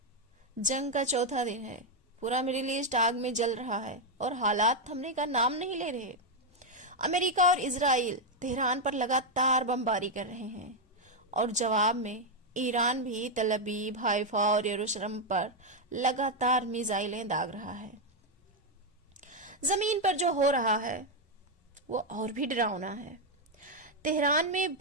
जंग का चौथा दिन है, पूरा मिडिल ईस्ट आग में जल रहा है और हालात थमने का नाम नहीं ले रहे। अमेरिका और इजराइल तेहरान पर लगातार बमबारी कर रहे हैं और जवाब में ईरान भी तल अवीव, हाइफा और यरूशलेम पर लगातार मिसाइलें दाग रहा है। जमीन पर जो हो रहा है वो और भी डरावना है। तेहरान में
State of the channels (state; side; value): normal; both; correlation 0.02